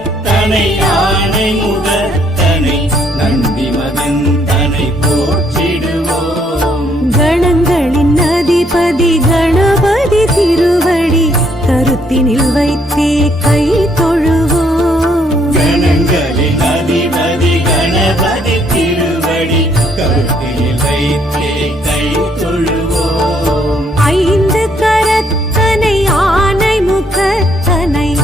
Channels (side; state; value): both; normal; correlation 0.69